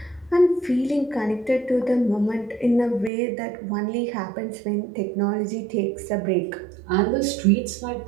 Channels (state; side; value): drops out; left; at 3.1 s